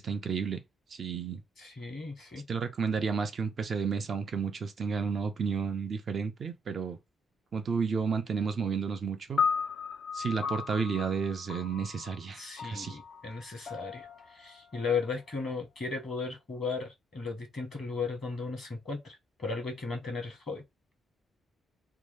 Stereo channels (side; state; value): both; normal; correlation 0.70